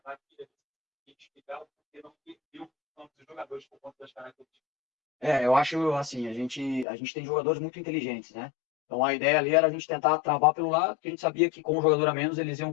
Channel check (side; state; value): right; drops out; at 6.9 s